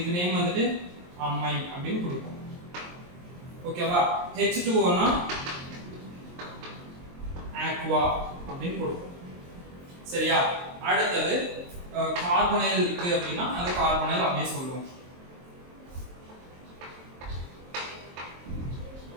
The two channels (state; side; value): late; left; 23 ms